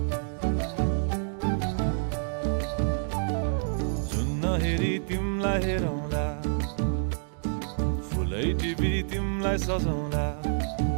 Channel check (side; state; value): left; silent; digital silence